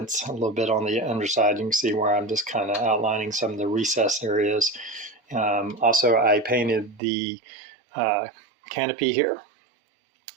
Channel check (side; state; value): left; drops out; at 7.0 s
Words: a little bit on the underside. You can see where I'm just kind of outlining some of the recess areas. Also, I painted the canopy here,